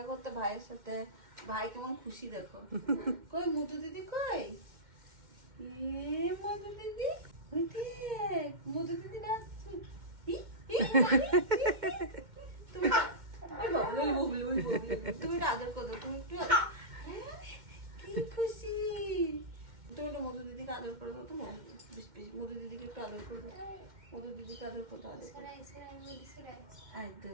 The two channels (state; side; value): late; left; 2.1 ms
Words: করতে ভাইয়ের সাথে, ভাই কেমন খুশি দেখো। কই মধু দিদি কই? এ মধু দিদি, ওই দেখ মধু দিদি ডাকছে। ই, ই, তুমি ওই বাবু, ওই বাবু, ওই বাবু। তুমি এটা আদর করো, তুমি একটু কি খুশি। তুমি একটু মধু দিদিকে আদর করে দাও তো, মধু দিদিকে একটু আদর করে দাও, মধু দিদিকে আদর করতে আদর করো।